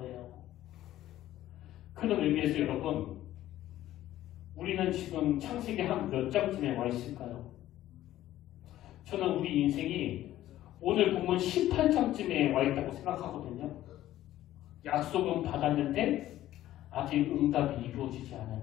그런 의미에서 여러분 우리는 지금 창세기 한 몇 장쯤에 와 있을까요? 저는 우리 인생이 오늘 본문 18장쯤에 와 있다고 생각하거든요. 약속은 받았는데 아직 응답이 이루어지지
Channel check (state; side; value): quieter; right; 13.8 dB